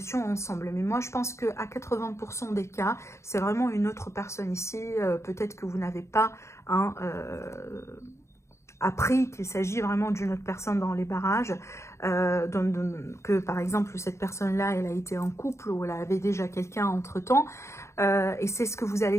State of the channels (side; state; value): right; late; 0.14 ms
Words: ensemble. Mais moi, je pense qu'à 80% des cas, c'est vraiment une autre personne ici. Peut-être que vous n'avez pas hein, appris qu'il s'agit vraiment d'une autre personne dans les barrages, que par exemple cette personne-là, elle a été en couple ou elle avait déjà quelqu'un entre-temps, et c'est ce que vous